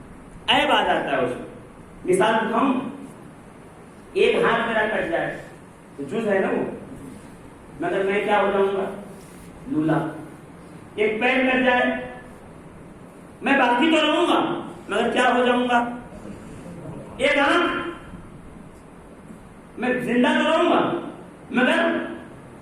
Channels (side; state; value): both; identical; correlation 1.00